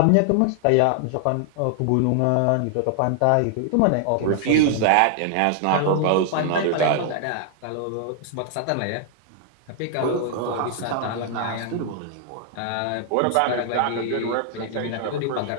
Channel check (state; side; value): different; both; correlation 0.00